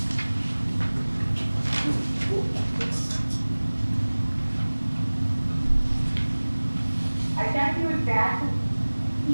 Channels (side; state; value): both; inverted; correlation -1.00